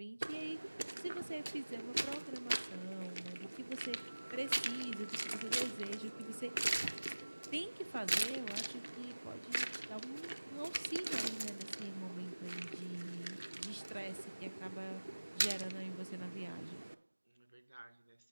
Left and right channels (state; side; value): inverted; both; correlation -1.00